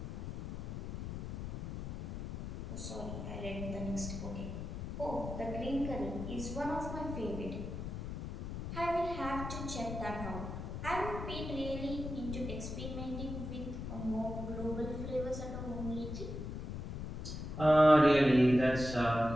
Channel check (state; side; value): noise; left; rumble, 6 dB below the sound